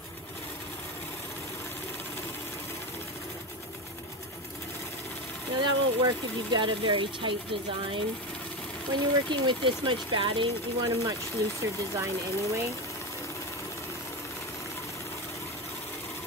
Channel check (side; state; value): both; normal; correlation 0.18